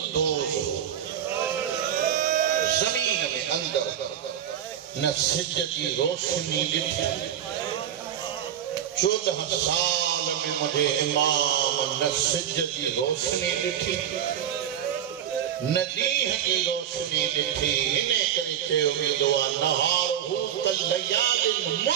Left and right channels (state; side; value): quieter; left; 9.8 dB